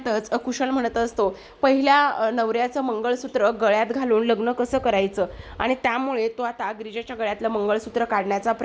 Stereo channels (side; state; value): both; identical; correlation 1.00